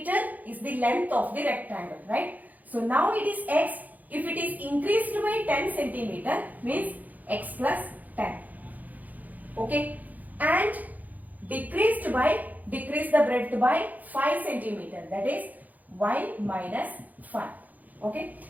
is the length of the rectangle, right? So now it is x. If it is increased by 10 centimeter, means x plus 10. Okay. And decrease the breadth by 5 centimeter. That is y minus 5. Okay.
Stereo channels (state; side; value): late; left; 0.081 ms